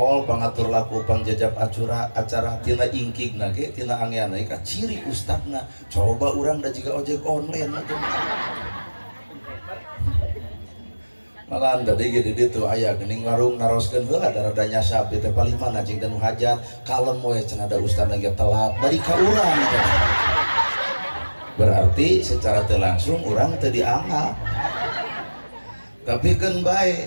pangatur laku pangjajab acara tina ingkig nage tina angeana ka ciri ustadna coba urang da jiga ojek online malah tadi gede ditu aya geuning warung naroskeun heula rada nyasap teh paling mana cing dan hajat kalem we cenah da ustad lagi telat bari ka urang berarti secara teu langsung urang teu dianggap tapi keun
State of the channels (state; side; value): inverted; both; correlation -1.00